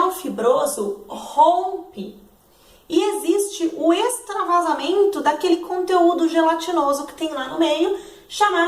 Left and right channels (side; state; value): both; identical; correlation 1.00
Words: fibroso rompe e existe o extravasamento daquele conteúdo gelatinoso que tem lá no meio,